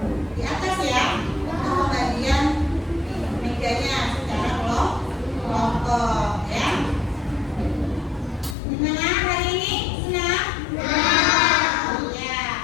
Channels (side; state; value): right; drops out; at 8.6 s